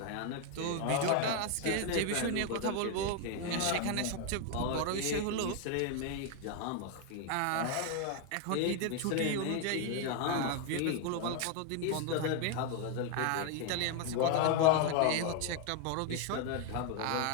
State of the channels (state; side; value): different; both; correlation 0.01